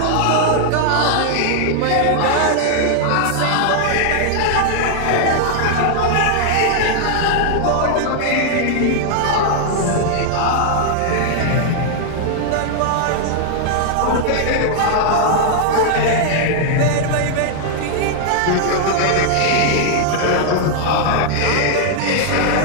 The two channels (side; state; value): both; different; correlation -0.01